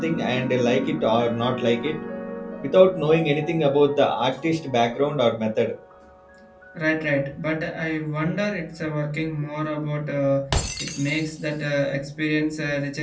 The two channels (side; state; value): both; identical; correlation 1.00